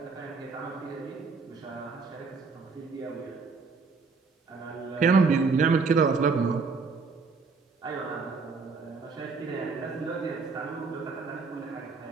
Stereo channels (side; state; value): left; quieter; 4.6 dB